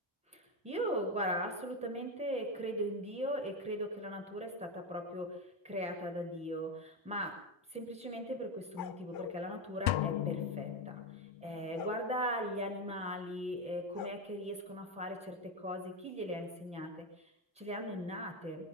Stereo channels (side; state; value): both; normal; correlation 0.12